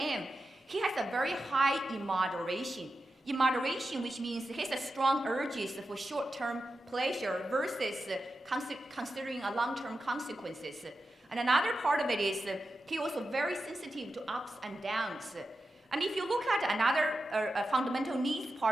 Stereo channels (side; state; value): both; normal; correlation 0.90